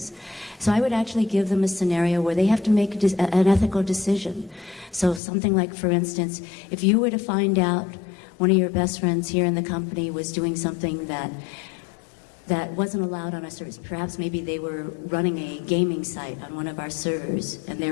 So I would actually give them a scenario where they have to make an ethical decision. So something like, for instance, if you were to find out one of your best friends here in the company was doing something that wasn't allowed on our service. Perhaps maybe they were running a gaming site on one of our servers and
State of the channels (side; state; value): right; drops out; at 5.2 s